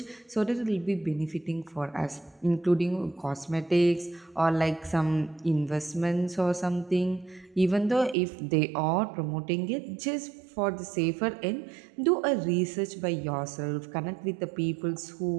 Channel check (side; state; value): left; drops out; at 8.2 s